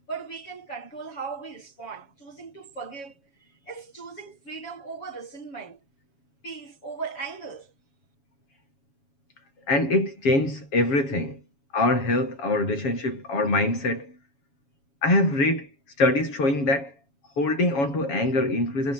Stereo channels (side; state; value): right; late; 7.2 ms